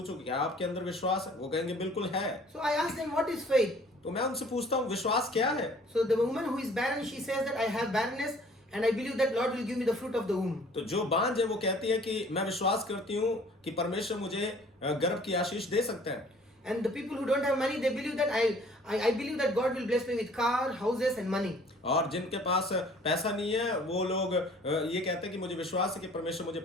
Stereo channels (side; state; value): both; normal; correlation 0.54